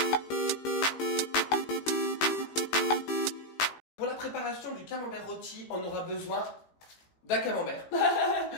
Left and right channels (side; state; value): right; late; 18 ms